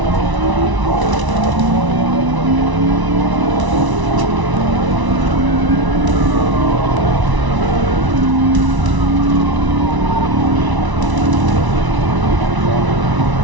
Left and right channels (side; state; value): left; late; 1.0 ms